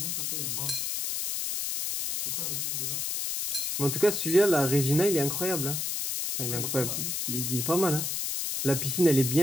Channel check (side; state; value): left; noise; hiss, 1 dB below the sound